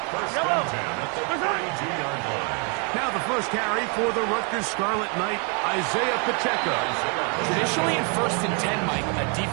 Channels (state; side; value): quieter; left; 36.7 dB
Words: First and 10 at the 32-yard line. Now the first carry for the Rutgers Scarlet Knight, Isaiah Pacheco. Traditionally in 1st and 10, Mike, a